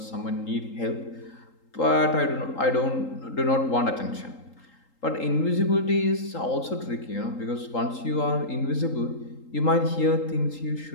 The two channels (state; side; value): late; right; 3.8 ms